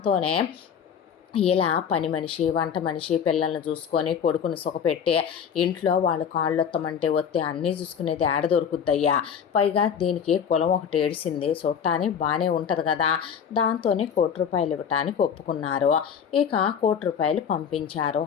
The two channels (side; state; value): right; quieter; 7.6 dB